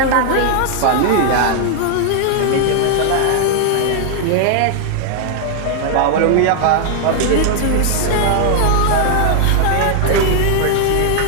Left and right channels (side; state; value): both; different; correlation 0.00